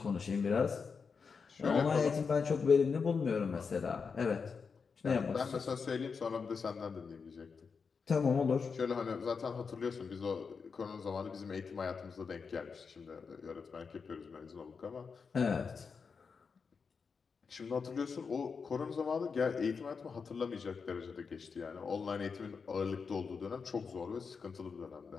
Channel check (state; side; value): quieter; right; 5.5 dB